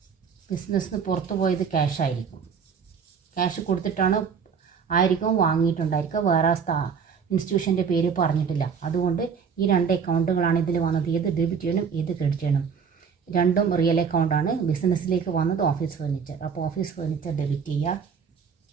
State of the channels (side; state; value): left; quieter; 6.4 dB